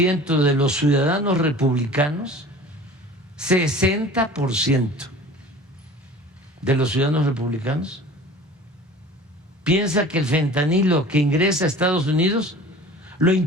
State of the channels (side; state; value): both; normal; correlation 0.42